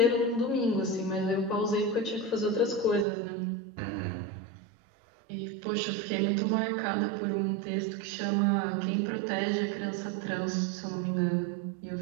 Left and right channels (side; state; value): left; drops out; at 3.1 s